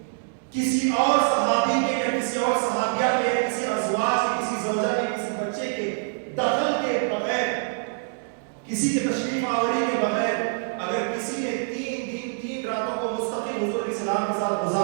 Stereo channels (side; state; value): left; silent; digital silence